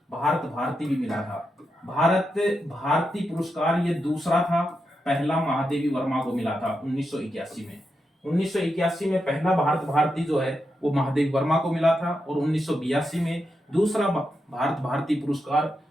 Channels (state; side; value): normal; both; correlation 0.86